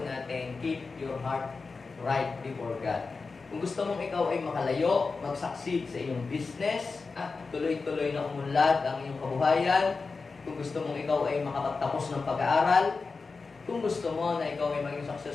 natin, Keep Your Heart Right Before God. Kung gusto mong ikaw ay makalayo, mag-succeed sa iyong business, tuloy-tuloy na umunlad ang iyong kabuhayan, kung gusto mong ikaw ay makapagtapos ng pag-aaral, kung gusto mo na ikaw ay maging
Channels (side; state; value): right; quieter; 4.3 dB